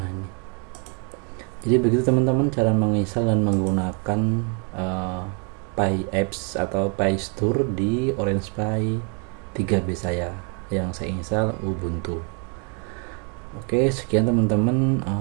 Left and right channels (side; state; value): left; quieter; 38.0 dB